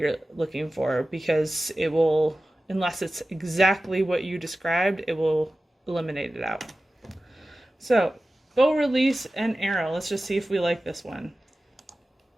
looking for, because it will, unless it's exactly what you described, it will eliminate it out. So, bow release and arrow. Let's just see if we like this one.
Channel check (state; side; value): normal; both; correlation 0.95